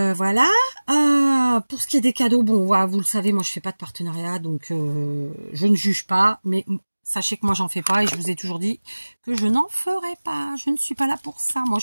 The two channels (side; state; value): both; inverted; correlation -1.00